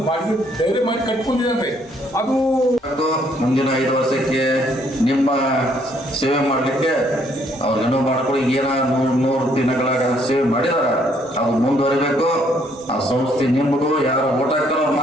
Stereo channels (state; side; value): normal; both; correlation 0.67